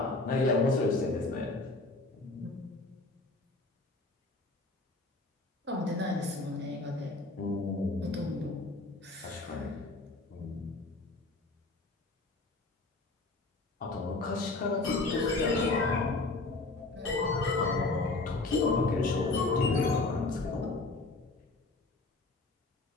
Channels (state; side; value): quieter; right; 3.2 dB